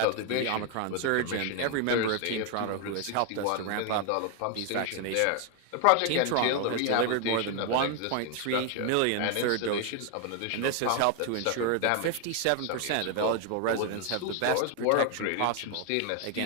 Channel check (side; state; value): both; different; correlation 0.00